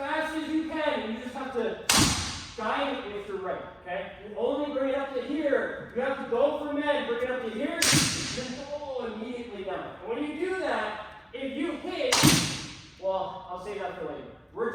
as you can, and you just have to guide it with your right, okay? You only bring it up to here. You have to go for men, bring it up to here, then go immediately down. And when you do that, if you hit, well, I'll save that for later.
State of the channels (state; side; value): identical; both; correlation 1.00